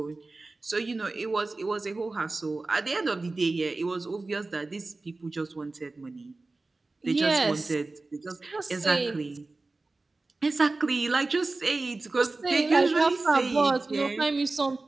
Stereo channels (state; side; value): quieter; left; 3.4 dB